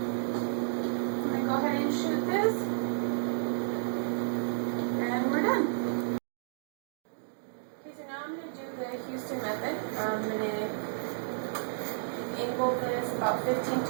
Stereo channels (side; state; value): left; silent; digital silence